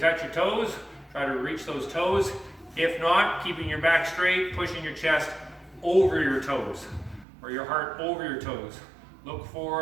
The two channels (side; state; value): left; drops out; at 7.2 s